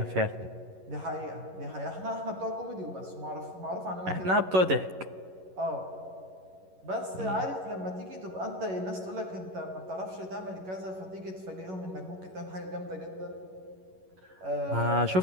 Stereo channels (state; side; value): late; left; 11 ms